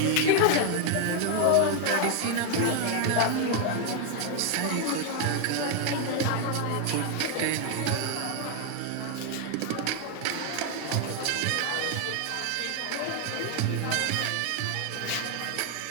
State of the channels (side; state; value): both; different; correlation 0.00